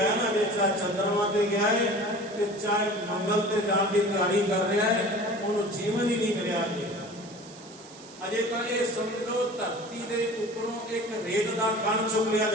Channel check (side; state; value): right; noise; hiss, 20 dB below the sound